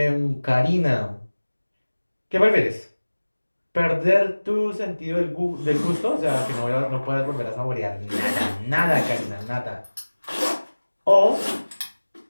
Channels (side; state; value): both; inverted; correlation -1.00